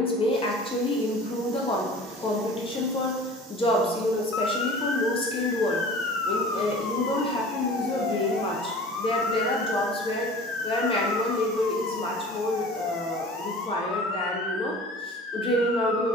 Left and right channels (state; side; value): normal; both; correlation 0.42